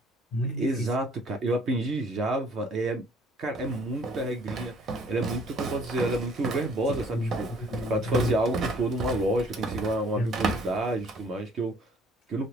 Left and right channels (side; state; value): both; normal; correlation 0.59